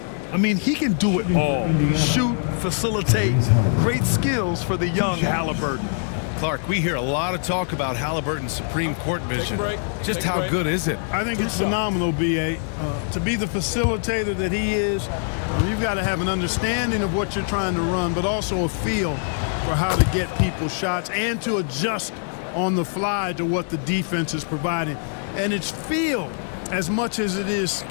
I mean, he can do it all. Shoot, facilitate, great skills for the young Halliburton. Clark, we hear a lot of talk about Halliburton's supreme court vision. Just how good is it? I think it's phenomenal, B.A. To be the facilitator that he is, you've got to have an understanding of what you're trying to run, but also a feel for how to get people shots and to adjust on the fly to what the defense is providing. And it's feel as much as it is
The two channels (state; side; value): silent; right; 63 dB below the other